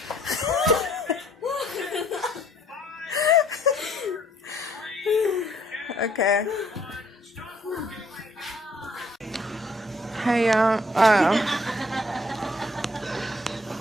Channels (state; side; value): normal; both; correlation 0.63